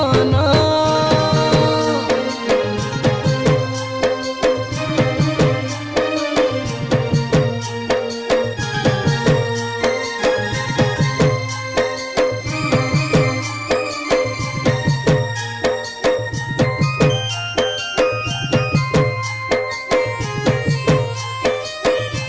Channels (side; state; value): both; identical; correlation 1.00